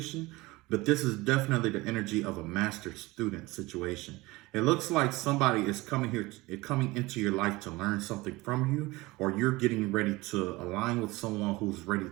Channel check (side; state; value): left; quieter; 21.2 dB